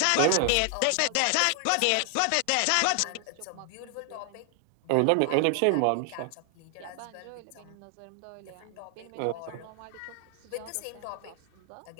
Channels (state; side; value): different; both; correlation 0.00